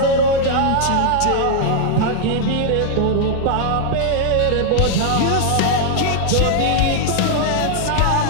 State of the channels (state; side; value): different; both; correlation -0.01